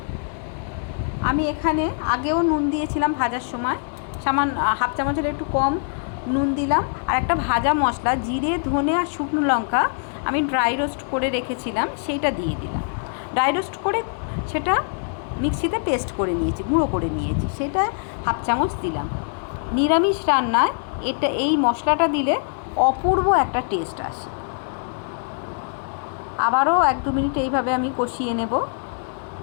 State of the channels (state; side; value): silent; right; 62 dB below the other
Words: আমি এখানে আগেও নুন দিয়েছিলাম ভাজার সময়, সামান্য হাফ চামচের একটু কম নুন দিলাম। আর একটা ভাজা মশলা জিরে, ধনে আর শুকনো লঙ্কা আমি ড্রাই রোস্ট করে রেখেছিলাম, সেইটা দিয়ে দিলাম। ড্রাই রোস্ট করে সেটা মিক্সিতে পেস্ট করে নিয়েছি, গুঁড়ো করে নিয়েছি, সেটা হাফ চামচ দিলাম। নিরামিষ রান্নায় এই মশলাটা দিলে অপূর্ব একটা টেস্ট আসে। আবারও 1-2 মিনিট এইভাবে আমি কষিয়ে নেব।